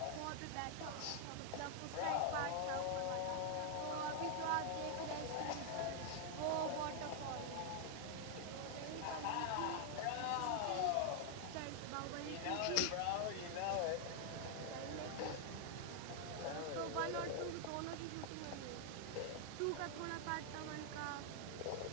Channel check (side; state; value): both; different; correlation 0.00